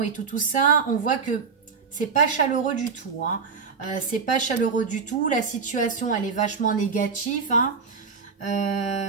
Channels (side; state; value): left; quieter; 5.4 dB